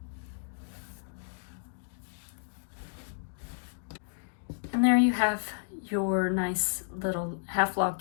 And there you have your nice little half log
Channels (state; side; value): silent; right; digital silence